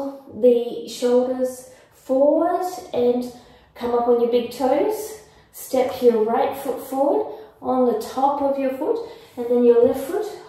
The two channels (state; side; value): identical; both; correlation 1.00